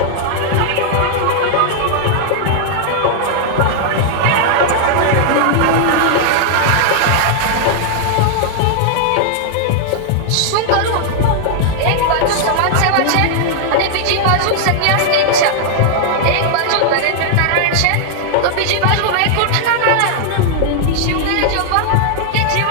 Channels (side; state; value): both; different; correlation -0.01